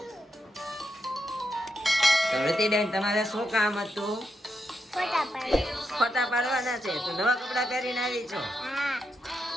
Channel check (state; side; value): normal; both; correlation 0.84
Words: તો રુચિબેન, તમારે શું કામ હતું? फोटा पाड़ो। ફોટા પાડવાના છે. તો નવા કપડા પહેરીને આવી છો? हाँ।